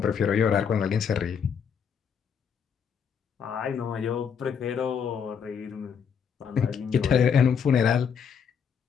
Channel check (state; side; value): quieter; right; 7.1 dB